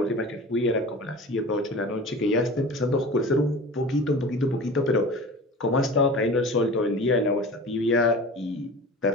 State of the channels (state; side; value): normal; both; correlation 0.37